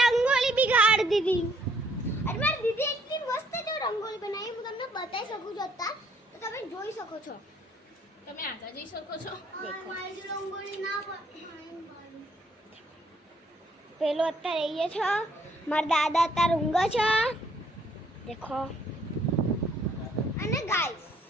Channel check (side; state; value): both; normal; correlation 0.66